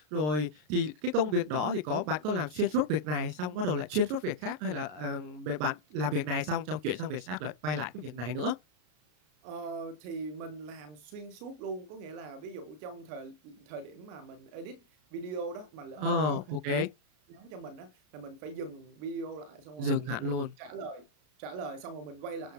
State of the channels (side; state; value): left; late; 33 ms